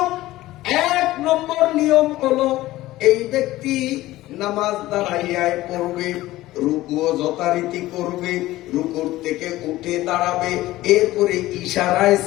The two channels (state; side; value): quieter; right; 16.6 dB